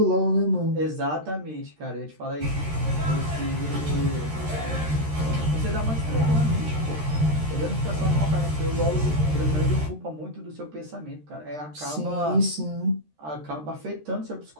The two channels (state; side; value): late; left; 13 ms